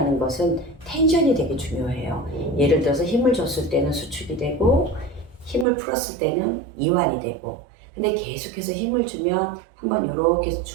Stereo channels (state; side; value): drops out; left; at 5.7 s